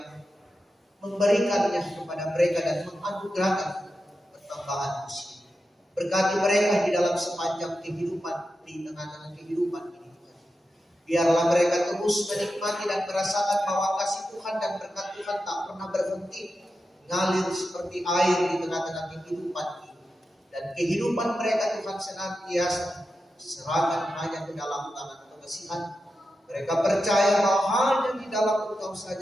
memberikannya kepada mereka dan menganugerahkan pertambahan usia. Berkati mereka di dalam sepanjang kehidupan, di tengah-tengah kehidupan ini. Biarlah mereka terus menikmati dan merasakan bahwa kasih Tuhan dan berkat Tuhan tak pernah berhenti, ngalir seperti air di tengah-tengah kehidupan ini. Dan kehidupan mereka Tuhan senantiasa serahkan hanya ke dalam tangan pengasihan. Mereka percaya bahwa hanya di dalam Engkau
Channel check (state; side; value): normal; both; correlation 0.90